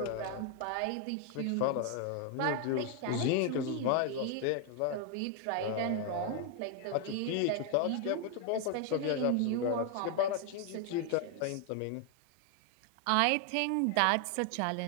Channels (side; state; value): both; different; correlation 0.00